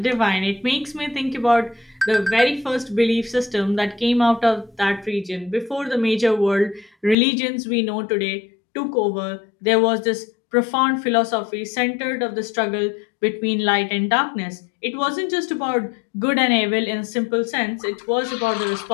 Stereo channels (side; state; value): right; drops out; at 7.2 s